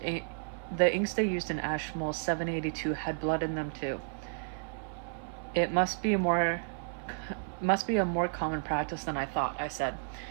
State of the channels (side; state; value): left; silent; 56 dB below the other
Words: inks they used in Ashmole 782 had blood in them too. It must be a more common practice than I thought, I said.